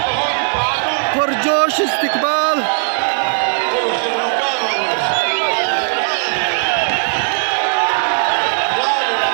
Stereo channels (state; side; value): silent; left; digital silence